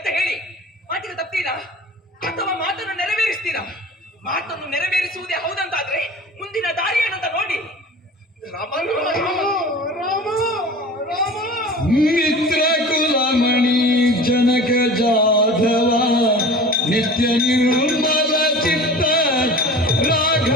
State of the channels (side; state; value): both; normal; correlation 0.39